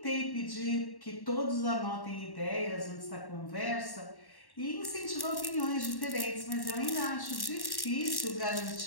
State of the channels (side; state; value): right; late; 1.1 ms